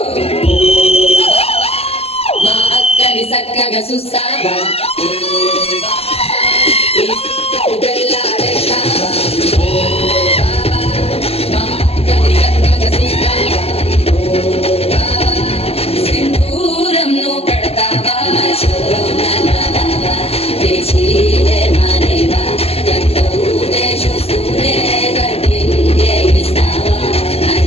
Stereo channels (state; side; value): late; right; 0.29 ms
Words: మా అక్కని చక్కగా చూస్తావా వెళ్ళాడేస్తావా సింధూరం నువ్వు పెడతావా తెచ్చిలే మానేవా కట్టూనే చూస్తూనే కట్టింగే ఇస్తావా